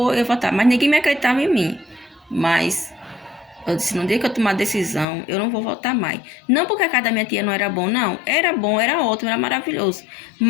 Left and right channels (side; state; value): right; drops out; at 5.1 s